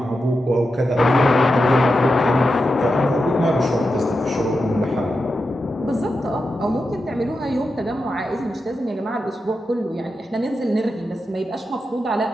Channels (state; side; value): normal; both; correlation 0.89